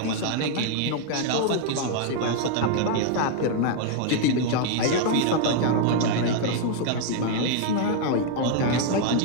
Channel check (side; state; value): both; different; correlation 0.00